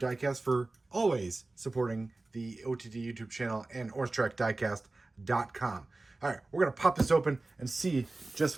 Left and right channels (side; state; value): left; quieter; 3.1 dB